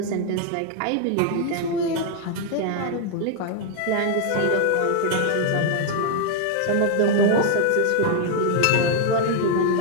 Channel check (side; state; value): both; different; correlation 0.00